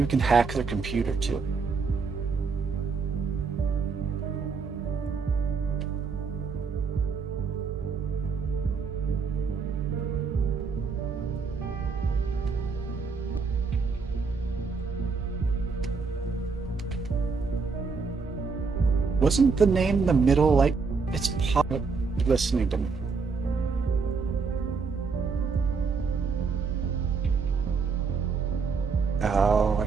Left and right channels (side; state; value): left; quieter; 4.9 dB